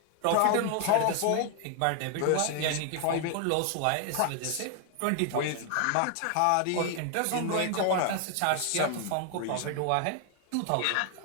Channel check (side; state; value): both; different; correlation 0.00